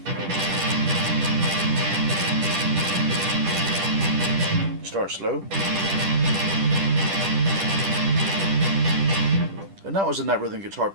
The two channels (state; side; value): late; left; 10 ms